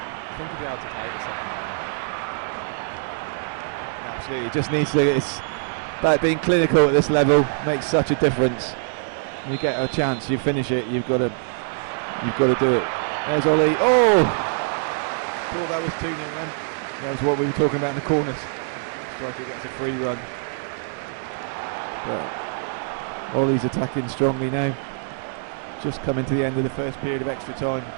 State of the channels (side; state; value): left; silent; digital silence